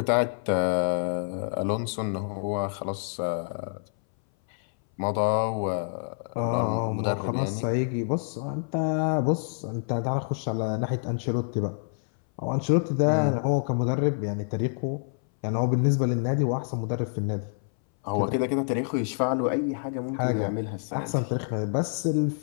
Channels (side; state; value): right; silent; 59 dB below the other